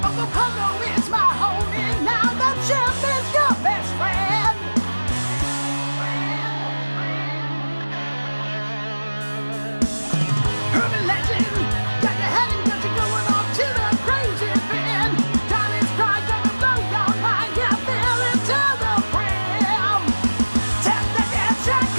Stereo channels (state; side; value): inverted; both; correlation -1.00